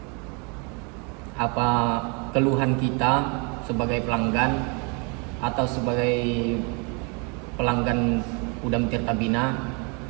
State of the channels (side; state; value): left; quieter; 33.3 dB